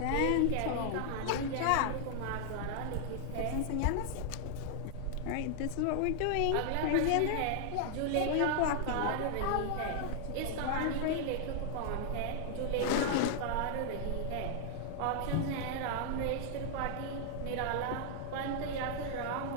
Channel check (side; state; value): both; different; correlation 0.00